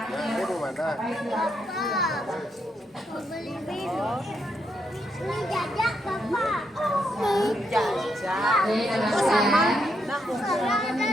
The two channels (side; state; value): both; normal; correlation 0.79